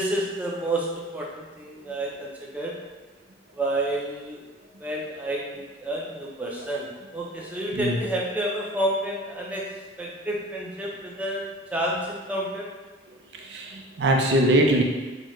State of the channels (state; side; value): normal; both; correlation 0.41